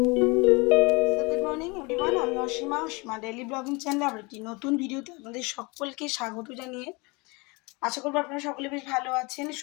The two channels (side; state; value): right; quieter; 27.3 dB